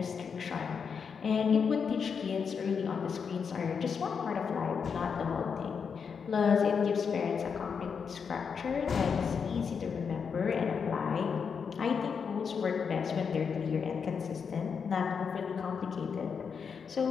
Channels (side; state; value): right; quieter; 6.2 dB